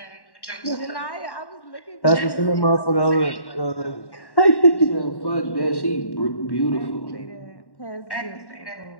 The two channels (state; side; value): late; right; 1.1 ms